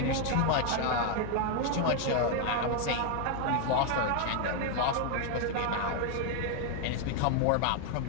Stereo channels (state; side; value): different; both; correlation 0.01